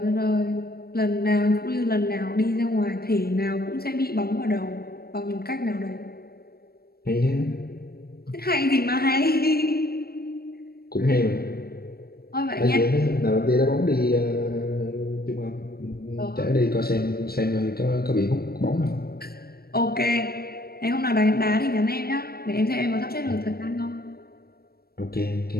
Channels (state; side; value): late; right; 0.45 ms